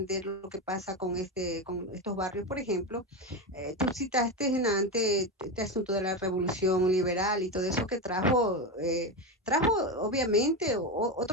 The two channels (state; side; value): normal; both; correlation 0.15